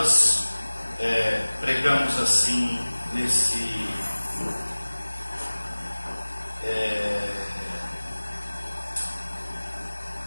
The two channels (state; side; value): inverted; both; correlation -1.00